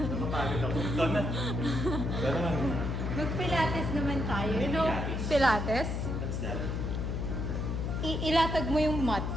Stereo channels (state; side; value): noise; left; hum, 1 dB below the sound